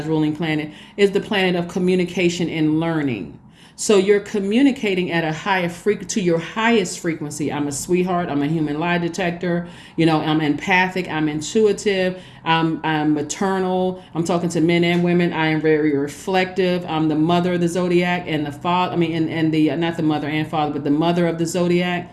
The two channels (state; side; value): identical; both; correlation 1.00